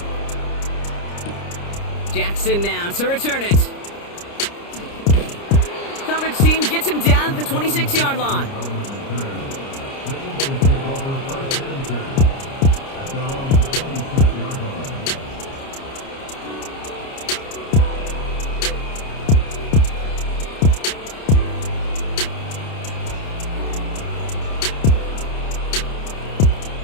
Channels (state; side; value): late; right; 30 ms